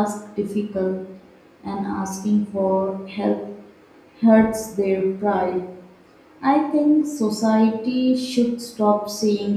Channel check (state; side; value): identical; both; correlation 1.00